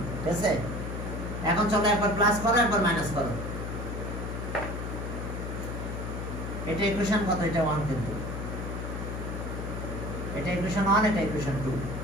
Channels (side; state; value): left; noise; hum, 5 dB below the sound